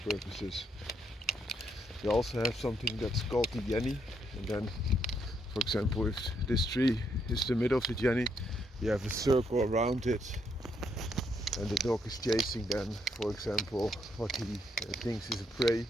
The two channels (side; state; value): both; normal; correlation 0.75